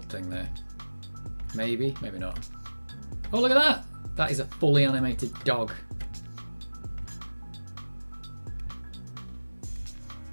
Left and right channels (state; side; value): inverted; both; correlation -1.00